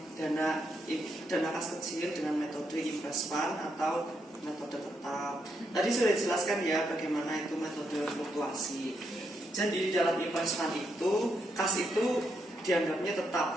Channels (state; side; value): normal; both; correlation 0.80